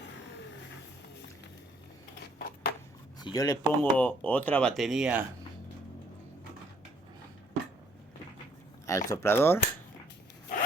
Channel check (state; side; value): normal; both; correlation 0.64